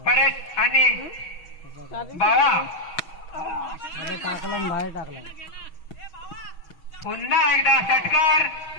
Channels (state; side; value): late; right; 6.3 ms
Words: परेश आणि बावा. टाकला बाहेर टाकला. पुन्हा एकदा षटकार.